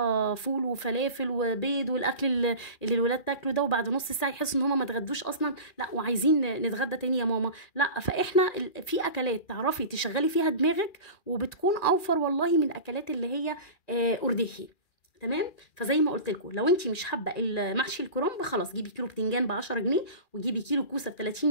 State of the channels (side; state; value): right; late; 2.4 ms